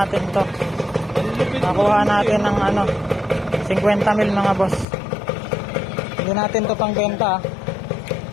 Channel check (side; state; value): right; drops out; at 4.9 s